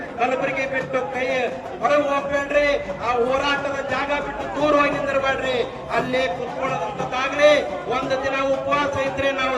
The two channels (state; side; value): identical; both; correlation 1.00